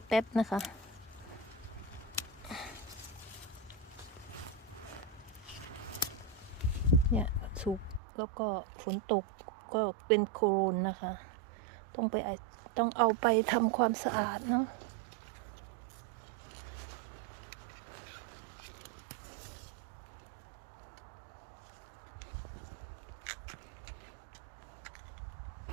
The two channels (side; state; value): left; drops out; at 8.0 s